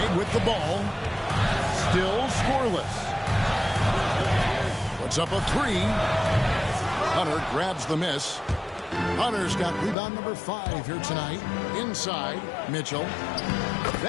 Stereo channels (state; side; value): drops out; right; at 10.0 s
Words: with the ball. Still scoreless. Puts up a 3. Hunter grabs the miss. Hunter's got rebound number 5 here tonight. Inside, Mitchell.